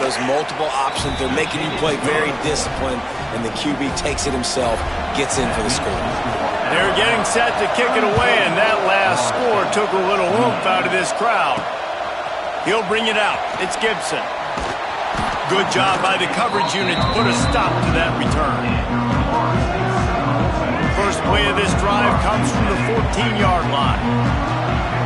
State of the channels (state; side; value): identical; both; correlation 1.00